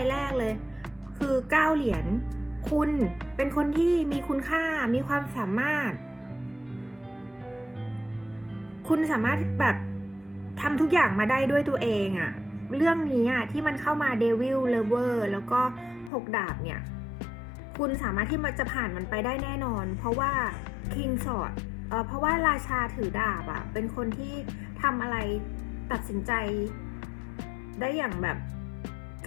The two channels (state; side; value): drops out; right; at 16.1 s